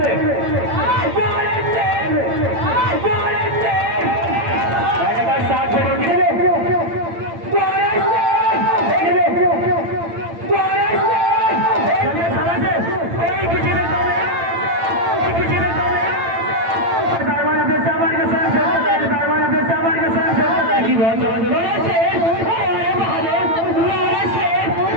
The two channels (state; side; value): late; left; 8.9 ms